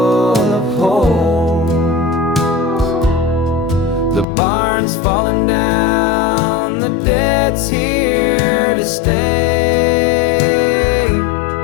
of holes. The barn's falling down, the debt's here to stay,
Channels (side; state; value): right; drops out; at 4.2 s